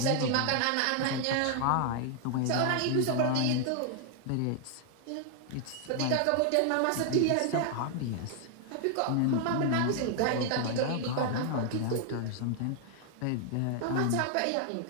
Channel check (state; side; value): different; both; correlation 0.00